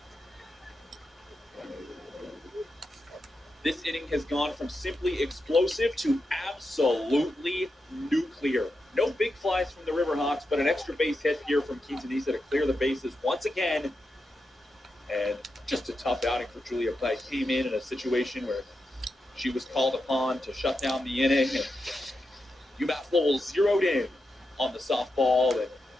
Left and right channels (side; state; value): both; normal; correlation 0.88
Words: This inning has gone from simply explosive to absolutely nuclear. No big flies from the Riverhawks, but an extra base hit here from Quintanilla to clear the bases once again. And just a tough outing for Julia Pike. Came in a situation where she was called upon to shut down the inning, and UMass Lowell zeroed in on the softball and